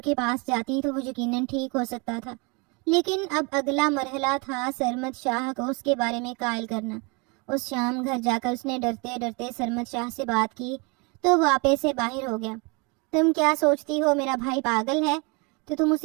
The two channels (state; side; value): quieter; left; 30.3 dB